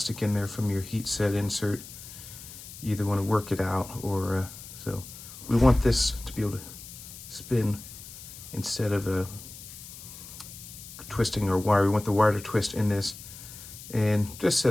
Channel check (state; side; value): noise; left; hiss, 14 dB below the sound